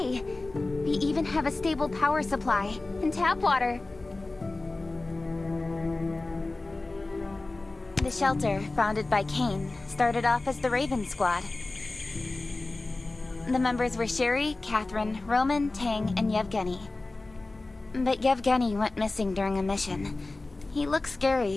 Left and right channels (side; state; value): right; quieter; 3.2 dB